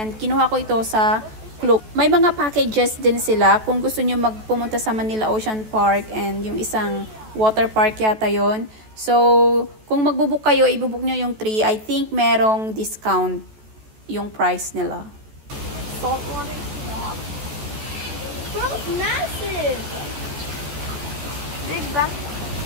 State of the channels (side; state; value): left; late; 14 ms